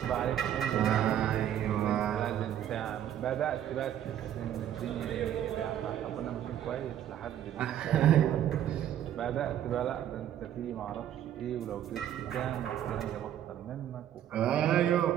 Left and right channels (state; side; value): quieter; left; 10.7 dB